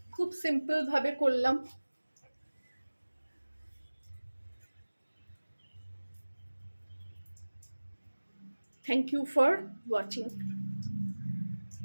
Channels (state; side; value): inverted; both; correlation -1.00